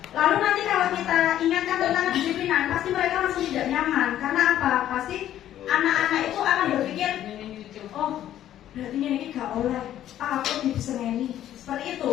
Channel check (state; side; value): quieter; right; 11.8 dB